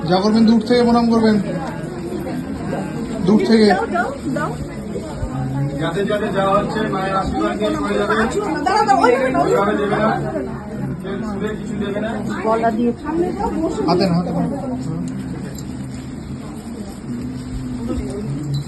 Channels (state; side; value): identical; both; correlation 1.00